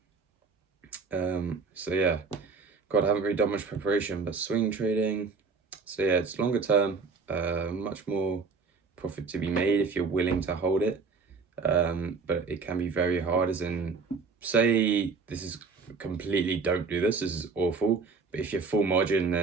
So yeah, God, I haven't really done much preparation, but swing trading. So yeah, it's longer term, much more profit to be made if you're willing to hold it. But it can be very hard, as in, say this is completely, don't do this is awful, but if you're full margin,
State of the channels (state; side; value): quieter; left; 4.7 dB